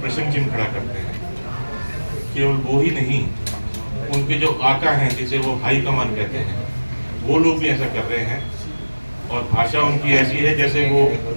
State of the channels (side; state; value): both; inverted; correlation -1.00